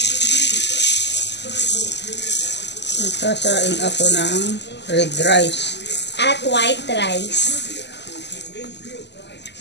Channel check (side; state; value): right; late; 0.50 ms